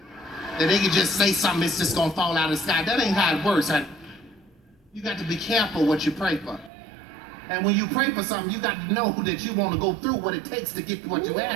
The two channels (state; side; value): drops out; left; at 6.7 s